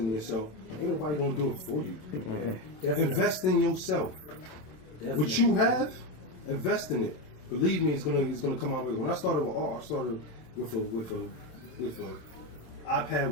yourself, ain't nobody gonna do it for you. Definitely. Invest in yourself. Definitely. What you have, invest in it. Believe me, it's gonna come out. When I started with art, I started with a iPad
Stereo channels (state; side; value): late; right; 27 ms